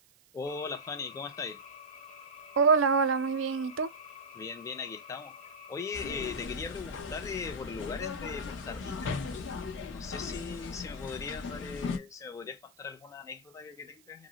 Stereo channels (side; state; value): right; noise; hiss, 29 dB below the sound